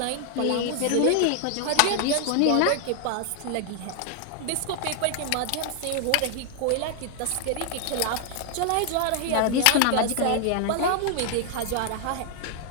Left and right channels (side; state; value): both; different; correlation 0.00